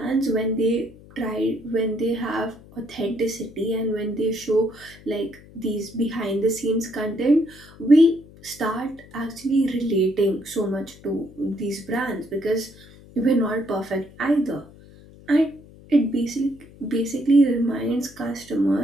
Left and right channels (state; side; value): noise; left; hum, 22 dB below the sound